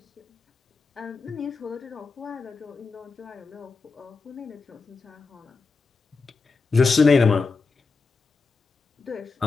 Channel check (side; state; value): right; quieter; 4.3 dB